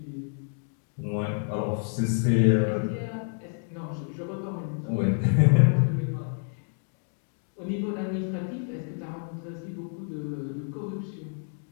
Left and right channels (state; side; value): silent; right; 59 dB below the other